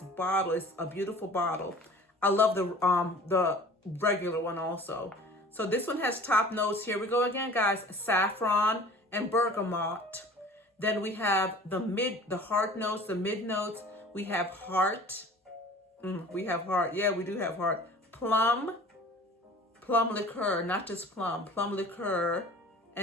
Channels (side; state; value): both; normal; correlation 0.45